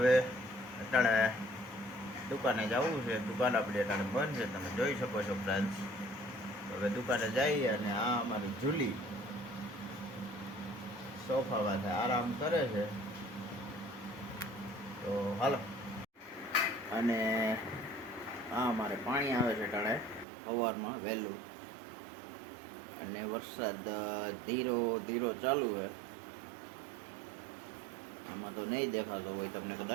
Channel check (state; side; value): drops out; left; at 20.2 s